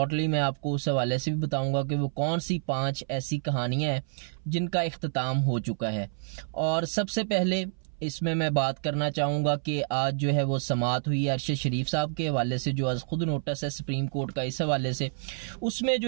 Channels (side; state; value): left; silent; 57 dB below the other